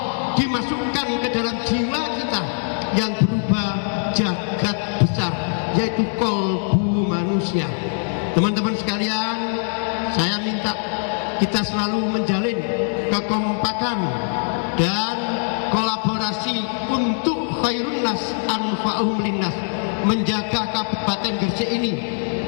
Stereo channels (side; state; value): right; silent; 64 dB below the other